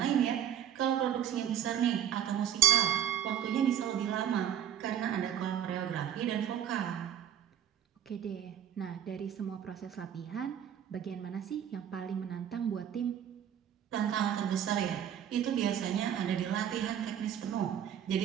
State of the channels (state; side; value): quieter; left; 9.7 dB